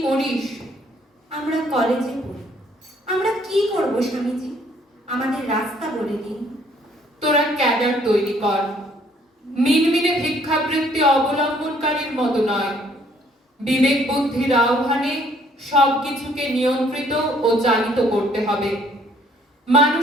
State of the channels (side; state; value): both; normal; correlation 0.62